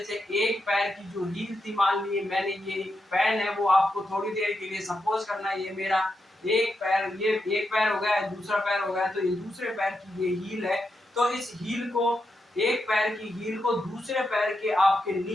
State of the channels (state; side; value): normal; both; correlation 0.85